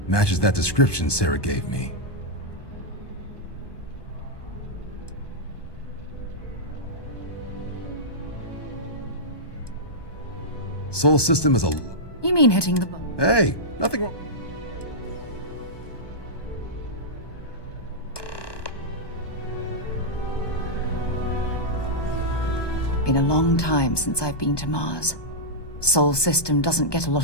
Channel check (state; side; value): late; right; 1.2 ms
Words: Matches that description Sarah gave me. Sol system is a... You mean hitting the button? Hey, nothing wrong. Been a long time since I've been to Mars. Sol system doesn't get a